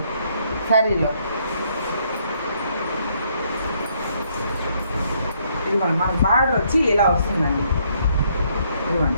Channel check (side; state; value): both; inverted; correlation -0.70